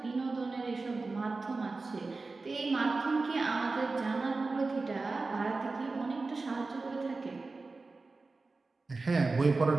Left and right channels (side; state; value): left; quieter; 3.7 dB